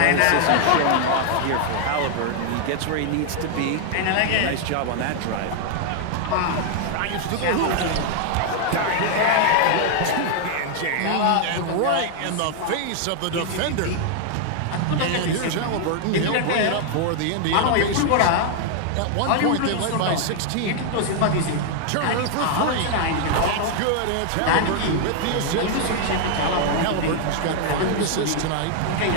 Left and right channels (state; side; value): different; both; correlation 0.00